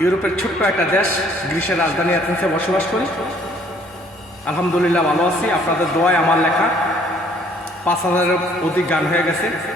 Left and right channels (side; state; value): both; normal; correlation 0.60